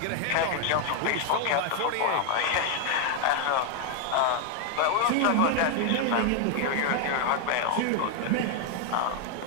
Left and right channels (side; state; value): both; different; correlation 0.00